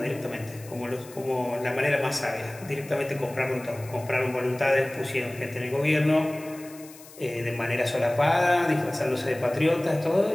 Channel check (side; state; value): left; noise; hiss, 20 dB below the sound